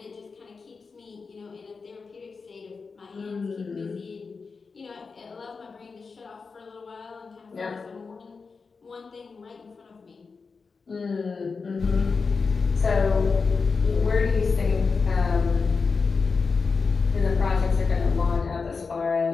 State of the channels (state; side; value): quieter; right; 4.7 dB